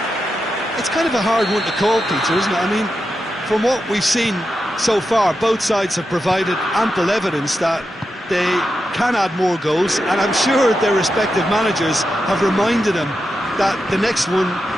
It's kind of a hard one to call, Peter, isn't it? I mean, from what we've seen so far, both sides have provided ample evidence that they can add more goals, and I'm sure their respective managers have reminded them that the next one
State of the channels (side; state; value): both; normal; correlation 0.88